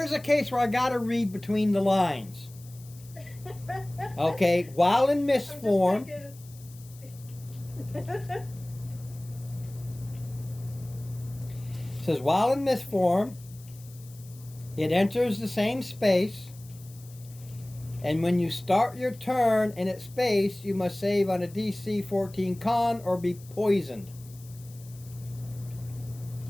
a case where I gotta read between the lines. Okay, while in mist form, it says while in mist form, it enters the same space, and when you start your turn in its space, you must save on a DC 14 con or be poisoned.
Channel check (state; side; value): noise; left; hiss, 22 dB below the sound